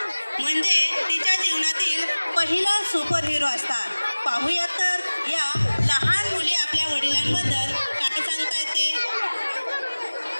म्हणजे तिच्या जीवनातील पहिला सुपर हिरो असतात. पाहूयात तर या लहान मुली आपल्या वडिलांबद्दल काय सांगता येते.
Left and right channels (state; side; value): inverted; both; correlation -1.00